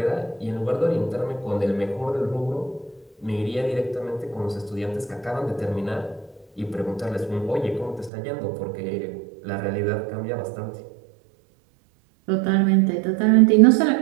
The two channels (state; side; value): drops out; left; at 8.1 s